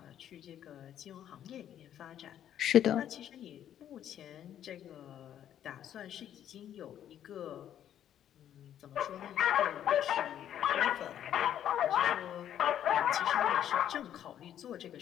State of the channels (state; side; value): quieter; right; 10.5 dB